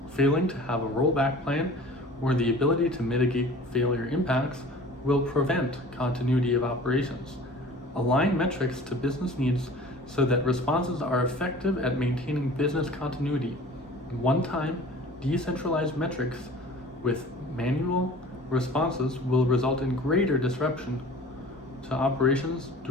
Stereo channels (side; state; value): both; normal; correlation 0.44